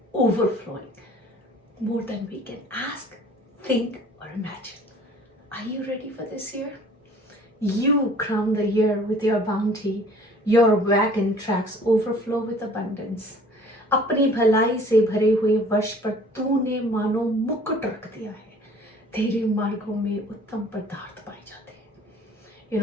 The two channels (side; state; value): both; normal; correlation 0.51